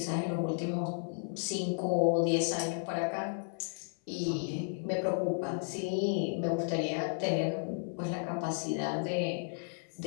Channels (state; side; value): silent; right; 55 dB below the other